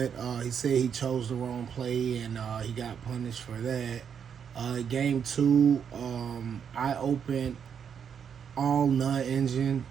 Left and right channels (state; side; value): quieter; left; 7.5 dB